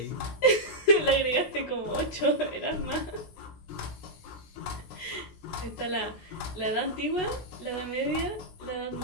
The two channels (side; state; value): right; late; 16 ms